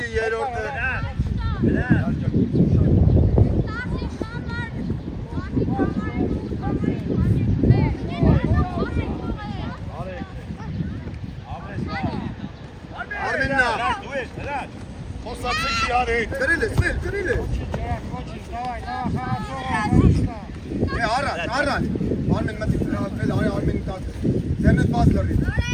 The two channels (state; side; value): identical; both; correlation 1.00